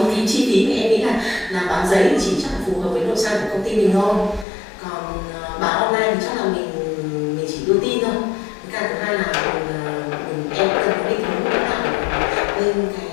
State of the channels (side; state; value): right; drops out; at 4.5 s